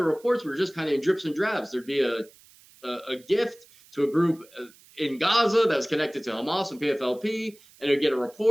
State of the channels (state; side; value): noise; right; hiss, 26 dB below the sound